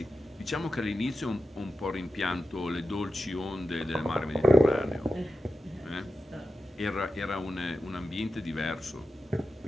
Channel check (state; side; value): normal; both; correlation 0.91